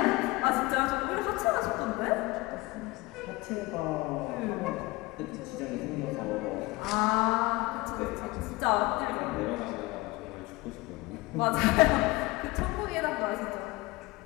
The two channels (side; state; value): right; quieter; 21.8 dB